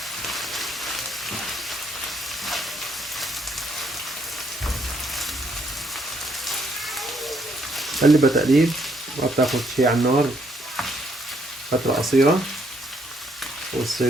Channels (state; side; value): normal; both; correlation 0.71